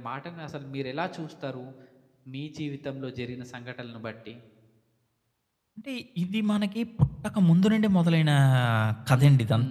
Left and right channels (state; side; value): identical; both; correlation 1.00